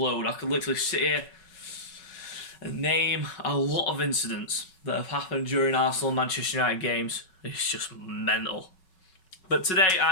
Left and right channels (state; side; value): late; right; 5.4 ms